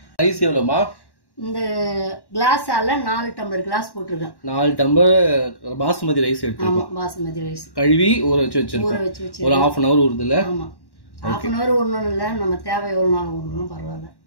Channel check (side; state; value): right; late; 1.1 ms